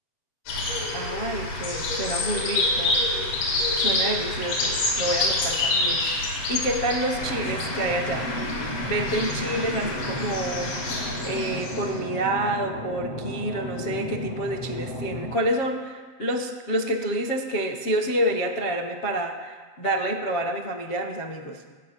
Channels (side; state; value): right; late; 7.4 ms